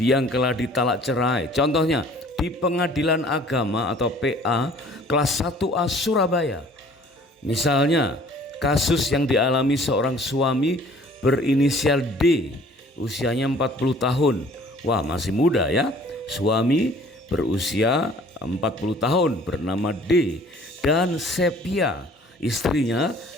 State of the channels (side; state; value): both; normal; correlation 0.53